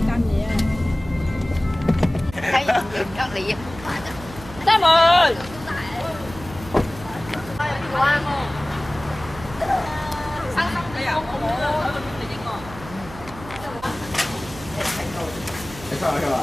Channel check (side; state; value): right; noise; hum, 16 dB below the sound